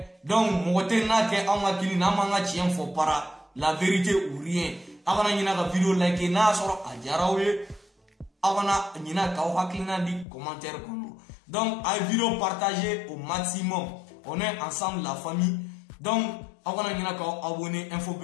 donc moté na ke on a kili na manga chien fo para la vérité ou rien avant na la vidéo like na soro ajarawe avant na ka o haklina di commentaire kono donc à vidéo partagée au maximum on est ensemble la famille donc avant na ka abonner info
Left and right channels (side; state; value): right; drops out; at 10.2 s